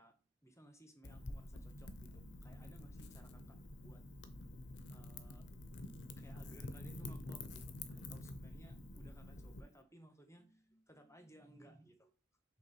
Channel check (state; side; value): normal; both; correlation 0.80